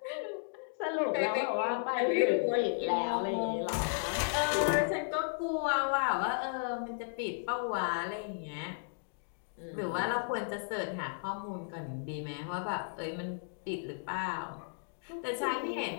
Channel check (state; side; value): silent; right; digital silence